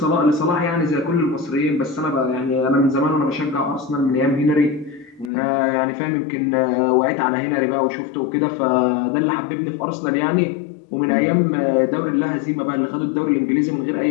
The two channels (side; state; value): right; drops out; at 5.3 s